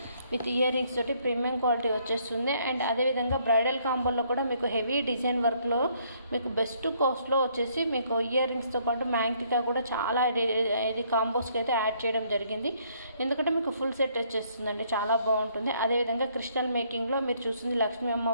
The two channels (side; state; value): both; inverted; correlation -0.67